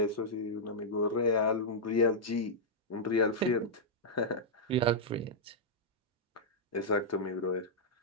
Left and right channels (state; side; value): normal; both; correlation -0.08